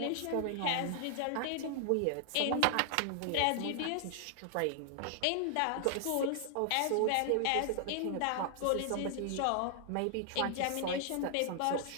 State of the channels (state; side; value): different; both; correlation 0.00